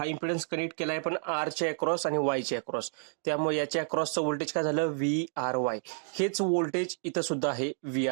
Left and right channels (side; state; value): left; silent; digital silence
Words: इम्पिडन्स कनेक्ट केलाय पण आरच्या अक्रॉस आणि वायच्या अक्रॉस. त्यामुळे याच्या अक्रॉसचं व्होल्टेज काय झालं, व्ही आर वाय. हेच व्होल्टेज इथं सुद्धा आहे, व्ही